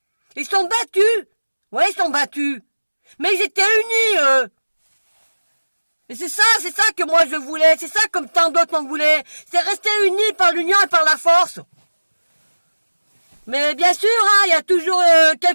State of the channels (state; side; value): inverted; both; correlation -1.00